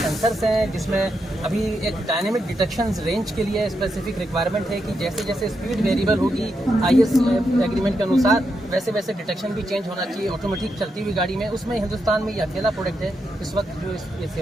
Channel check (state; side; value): normal; both; correlation 0.83